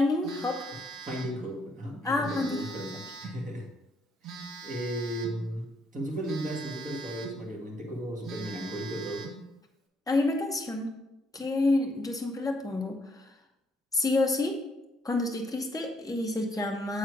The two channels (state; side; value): normal; both; correlation 0.72